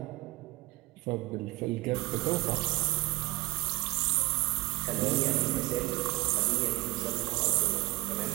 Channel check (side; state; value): left; quieter; 21.7 dB